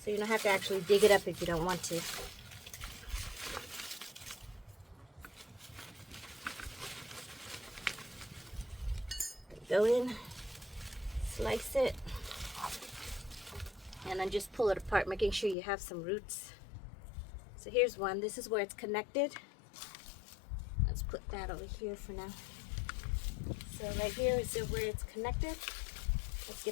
So you don't have to actually dig it up if you don't want to. Go in, slice it, and then just pull it apart, making sure you have some roots. So here's one. This is where it's connected. Let's put that over here for now. So right here is where it's connected. Let's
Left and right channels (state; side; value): drops out; right; at 15.6 s